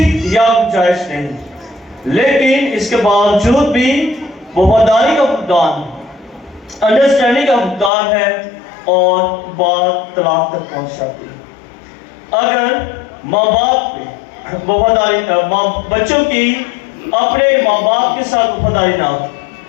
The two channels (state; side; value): drops out; right; at 7.9 s